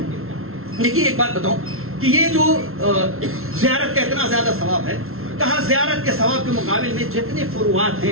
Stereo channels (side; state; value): left; late; 0.62 ms